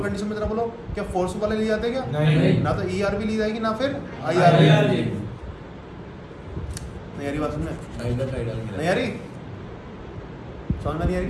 कंडीशन में जरा बोलो क्या फोर्स वाले लिए जाते हैं क्या, नहीं। ना तो ERV ली जाएगी ना फिर IRV। नहीं यारी बात सुनने, नहीं यारी समझ में नहीं आ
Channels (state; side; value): identical; both; correlation 1.00